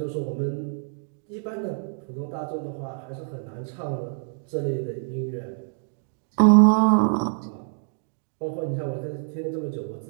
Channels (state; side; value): silent; left; digital silence